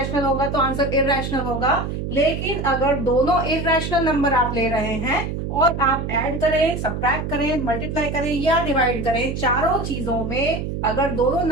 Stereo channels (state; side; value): noise; right; hum, 4 dB below the sound